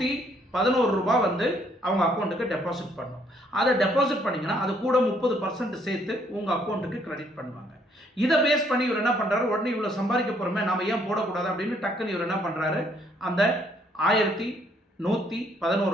ரூபாய் வந்து அவங்க அக்கௌண்ட்டுக்கு டெபாசிட் பண்ணணும். அதை டெபாசிட் பண்ணிங்கன்னா அது கூட 30% சேர்த்து உங்கள் அக்கௌண்ட்டுக்கு கிரெடிட் பண்ணுவாங்க. இதை பேஸ் பண்ணி இவர் என்ன பண்ணுறாரு, உடனே இவ்வளோ சம்பாதிக்க போகிறோமே நாம் ஏன் போடக்கூடாது அப்படின்னு டக்குன்னு இவர் என்ன பண்ணுறாரு, அந்த 1111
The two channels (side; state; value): both; normal; correlation 0.67